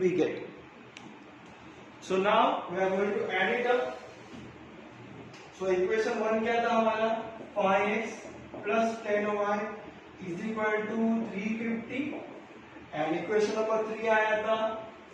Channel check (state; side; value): identical; both; correlation 1.00